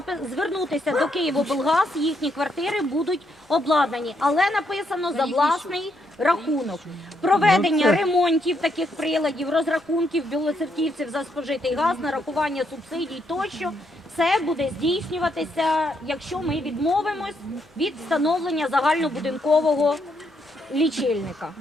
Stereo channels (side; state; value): both; normal; correlation 0.76